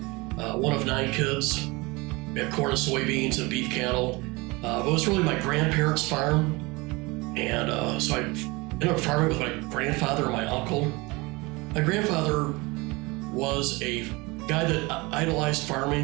one of 9 kids. We had corn and soybeans and beef cattle. But it was really my grandparents' farm, and so I ended up farming with my grandfather and my uncle. My grandfather was a guy that idolized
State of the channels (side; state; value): left; quieter; 24.4 dB